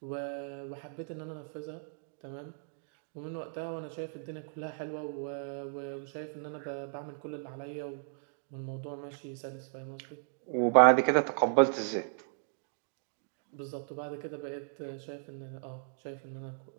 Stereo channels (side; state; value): left; silent; digital silence